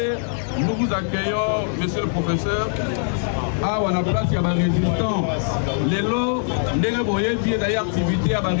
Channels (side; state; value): right; silent; digital silence